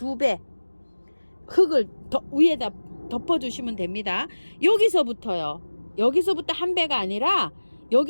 흙을 위에다 덮어주시면 됩니다. 여기서부터요. 여기서부터 1배가 아니라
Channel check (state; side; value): inverted; both; correlation -1.00